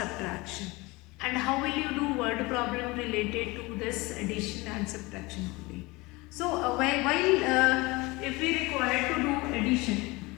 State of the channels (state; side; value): quieter; right; 23.3 dB